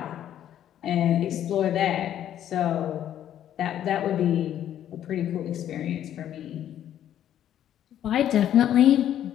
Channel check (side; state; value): right; quieter; 10.9 dB